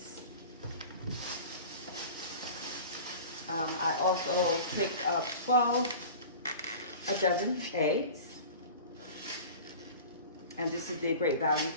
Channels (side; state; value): both; inverted; correlation -0.38